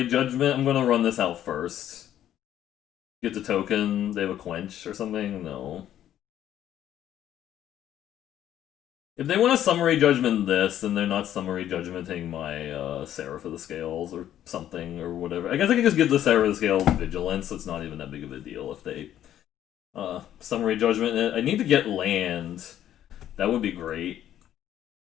judgment. I'm gonna run this out first. Get the token. They have a quench or something? No. If they want to summary judgment this, then they're not summary judgmenting my Seraph of the Scales or something or whatever. I guess I can just give the Seraph of the Scales vigilance, so it's not even that big of a deal if they summary judgment it. I need to get land. That would be great.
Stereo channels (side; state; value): right; quieter; 11.4 dB